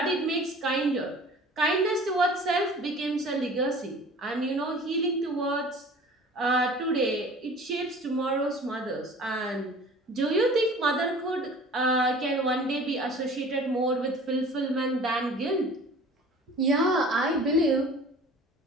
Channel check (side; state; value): both; normal; correlation 0.45